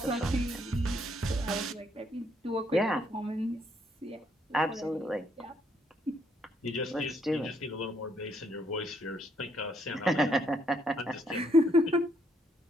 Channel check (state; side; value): normal; both; correlation 0.71